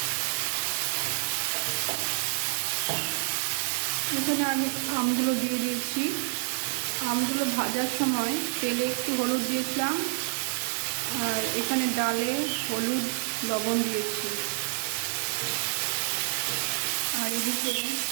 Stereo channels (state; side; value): silent; left; digital silence